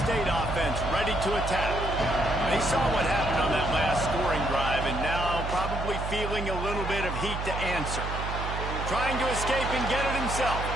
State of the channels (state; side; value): noise; right; hum, 5 dB below the sound